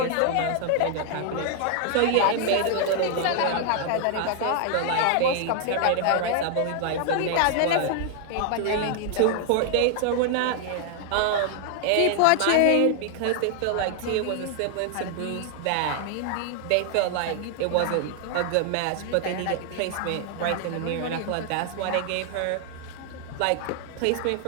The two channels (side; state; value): both; different; correlation 0.00